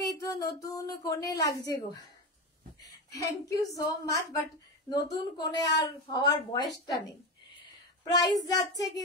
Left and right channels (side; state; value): both; normal; correlation 0.18